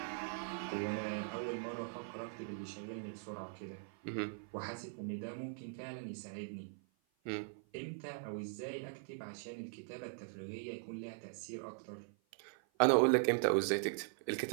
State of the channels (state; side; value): silent; left; 51 dB below the other